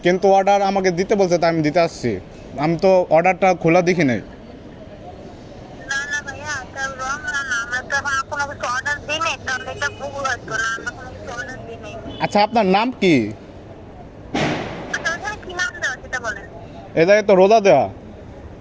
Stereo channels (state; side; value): identical; both; correlation 1.00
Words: কিন্তু অর্ডার আমাকে দিতে বলছে, তাই আমি দিতে আসছি। আমি তো অর্ডারটা খোলা দেখি নাই। আচ্ছা, আপনার নাম কি? এ জায়গায় তো রোদা দেওয়া।